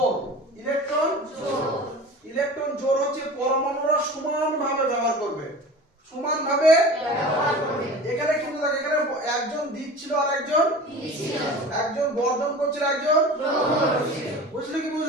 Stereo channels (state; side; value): normal; both; correlation 0.37